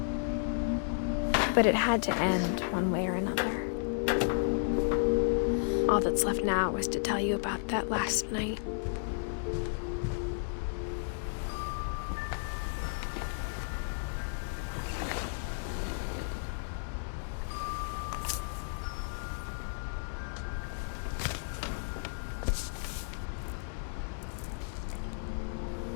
But it had to end one way or another. All that's left now is to tell you about that last night.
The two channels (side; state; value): right; silent; digital silence